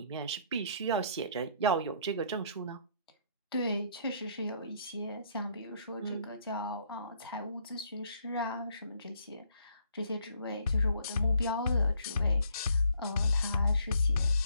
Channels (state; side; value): inverted; both; correlation -0.66